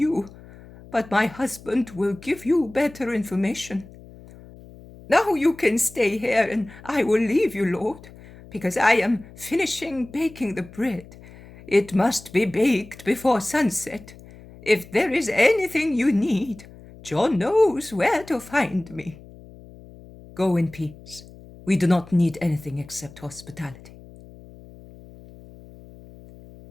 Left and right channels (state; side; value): noise; left; hum, 20 dB below the sound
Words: but my husband will give you better information. Now you can stay here, and I will leave you, Lord, because I am finishing baking the bread. It must be baked before sunset. If there is anything you need, John knows where to find me." "Go in peace. We do not need anything except hospitality."